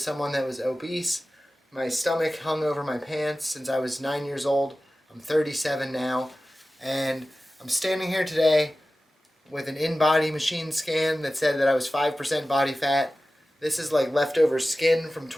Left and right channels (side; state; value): both; normal; correlation 0.96